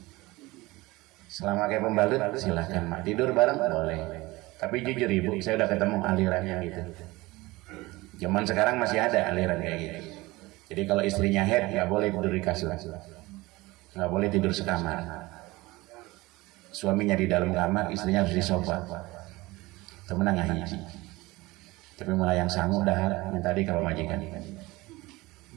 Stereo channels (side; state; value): left; quieter; 20.9 dB